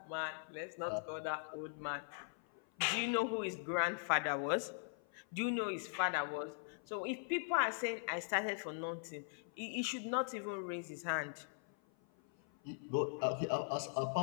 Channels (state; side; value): silent; right; 51 dB below the other